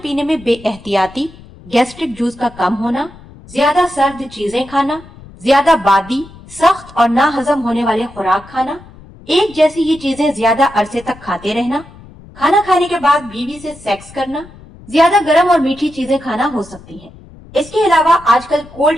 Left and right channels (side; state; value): left; noise; rumble, 21 dB below the sound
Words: پینے میں بے احتیاطی، گیسٹرک جوس کا کم ہونا، زیادہ سرد چیزیں کھانا، زیادہ بادی، سخت اور ناہضم ہونے والے خوراک کھانا، ایک جیسی ہی چیزیں زیادہ عرصے تک کھاتے رہنا، کھانا کھانے کے بعد بیوی سے سیکس کرنا، زیادہ گرم اور میٹھی چیزیں کھانا ہو سکتی ہیں۔ اس کے علاوہ آج کل کولڈ